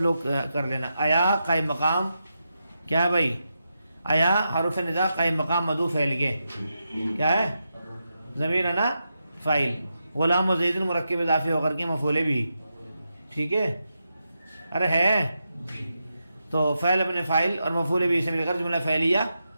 لوگ کر لینا آیا قائم مقام کیا ہے بھائی آیا حرف ندا قائم مقام مدعو فعل کے کیا ہے ضمیر انا فاعل غلام و زید مرکب اضافی ہو کر کے مفعول بھی ٹھیک ہے ارے ہے تو فعل اپنے فاعل اور مفعول بھی سے مل کر جملہ فعلیہ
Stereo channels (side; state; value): both; inverted; correlation -0.87